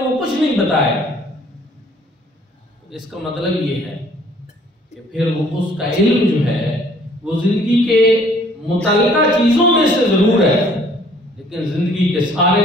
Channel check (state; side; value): normal; both; correlation 0.58